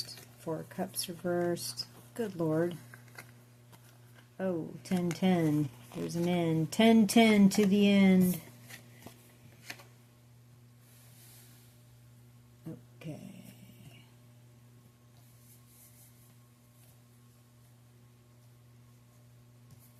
Four of Cups reversed. Good Lord. Oh, 10-10. There's an end. 10-10 to the end. Okay.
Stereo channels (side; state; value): both; identical; correlation 1.00